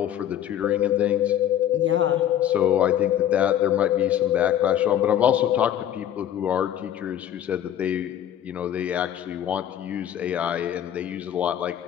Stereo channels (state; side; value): quieter; right; 10.7 dB